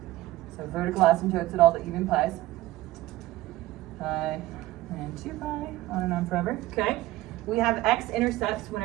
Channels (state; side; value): quieter; left; 16.8 dB